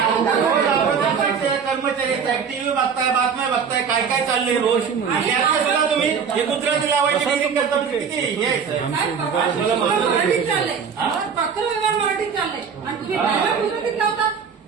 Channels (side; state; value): left; quieter; 6.5 dB